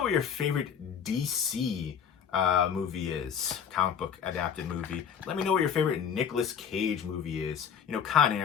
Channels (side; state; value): right; quieter; 7.8 dB